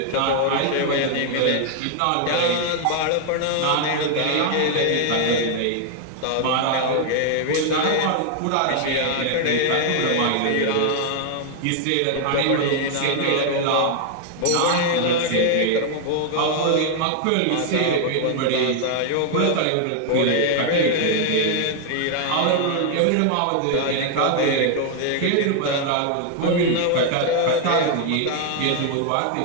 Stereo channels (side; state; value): both; different; correlation 0.00